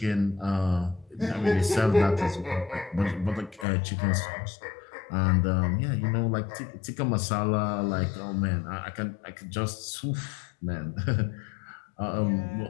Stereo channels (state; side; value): drops out; right; at 3.7 s